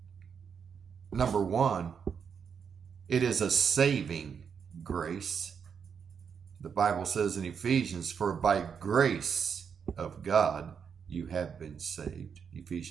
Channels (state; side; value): quieter; left; 6.8 dB